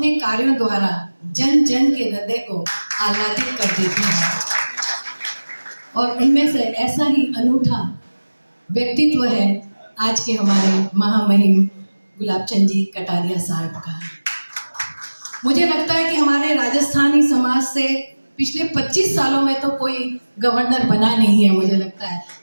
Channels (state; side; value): inverted; both; correlation -1.00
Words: कार्यों द्वारा जन जन के हृदय को आह्लादित कर देते हैं। और उनमें से ऐसा ही अनूठा व्यक्तित्व है आज के हमारे महामहिम गुलाबचंद जी कटारिया साहब का। मुझे लगता है कि हमारे राजस्थानी समाज से पिछले 25 सालों में तो कोई गवर्नर बना नहीं है, मुझे लगता है,